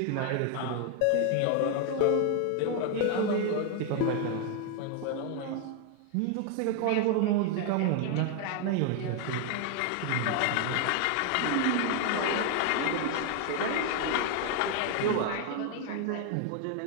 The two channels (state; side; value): different; both; correlation 0.01